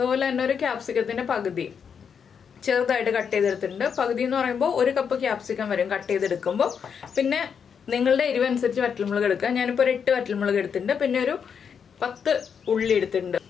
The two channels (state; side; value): quieter; right; 6.9 dB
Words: തന്നെ ഒരു ക്യാപ്സിക്കത്തിന്റെ പകുതി ചെറുതായിട്ട് കട്ട് ചെയ്തെടുത്തിട്ടുണ്ട്. പകുതി എന്ന് പറയുമ്പോൾ 1 കപ്പ് ക്യാപ്സിക്കം വരും കട്ട് ചെയ്തെടുക്കുമ്പോൾ. പിന്നെ നിങ്ങളുടെ എരിവനുസരിച്ച് വറ്റൽമുളക് എടുക്കുക. ഞാനിപ്പോൾ ഒരു 8 വറ്റൽമുളക് എടുത്തിട്ടുണ്ട്. പിന്നെ ഒരു 10 ഉള്ളി എടുത്തിട്ടുണ്ട്.